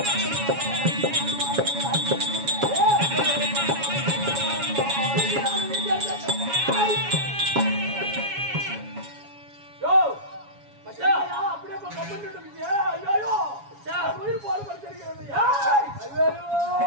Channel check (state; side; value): late; left; 7.2 ms